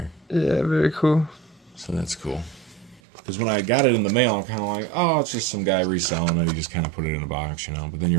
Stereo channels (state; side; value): drops out; left; at 3.0 s